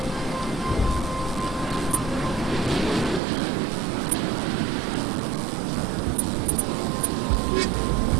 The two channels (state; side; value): drops out; left; at 3.2 s